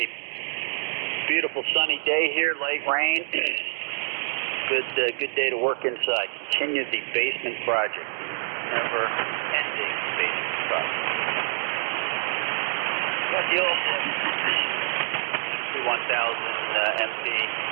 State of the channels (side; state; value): left; silent; 61 dB below the other